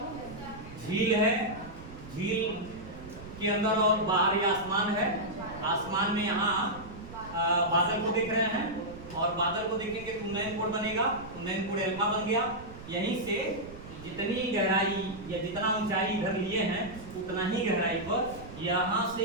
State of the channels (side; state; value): right; noise; rumble, 15 dB below the sound